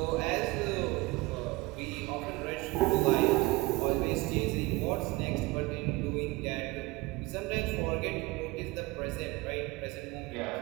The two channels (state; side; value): quieter; left; 22.1 dB